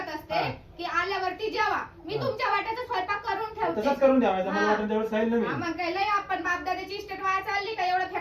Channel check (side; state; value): both; identical; correlation 1.00